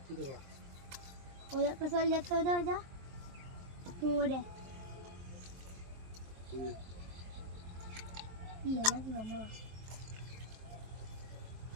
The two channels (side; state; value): left; late; 22 ms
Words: ওই একটা চল যাচ্ছে ওই যা ওরে